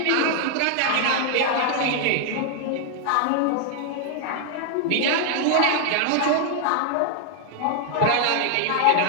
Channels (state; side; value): different; both; correlation 0.00